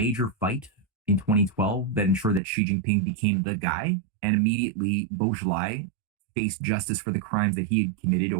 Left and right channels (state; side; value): drops out; left; at 2.4 s